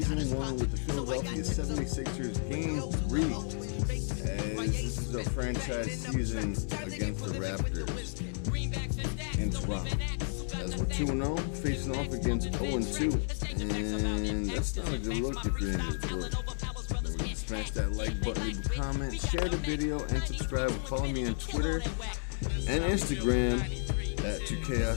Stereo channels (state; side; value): silent; right; 56 dB below the other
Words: 1 with the Philadelphia 76ers, Game 3, as this is our franchise season against the Raptors in Toronto, as we're 2-0, facing off against 0-2, and that's not a good look if you're in this book. Smash that like button, leave a comment, share the video, and subscribe. Follow me on Twitter and Instagram at